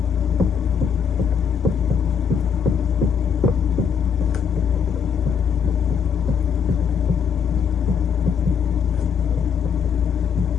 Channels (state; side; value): quieter; right; 6.9 dB